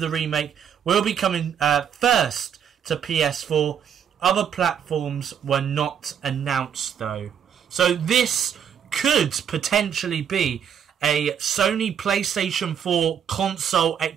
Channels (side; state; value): left; quieter; 8.3 dB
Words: the remake will be coming first to PS4. Other platforms were not announced though. So this could potentially be a Sony PlayStation 4 console